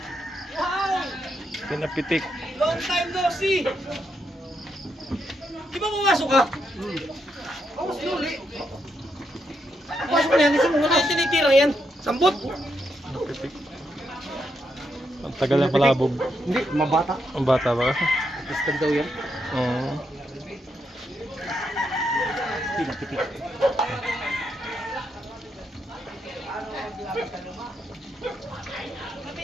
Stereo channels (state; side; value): normal; both; correlation 0.80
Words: Pinapitik. Long time no see! Di ba pumasok ka? Ako slowly. Pasok na yan, kasi mo wala yung tinitirang yan. Sambot! Ang tagal na palabog. Hindi, mabata. Ang bata ba? Istag daw yan. Oo. Pinapitik.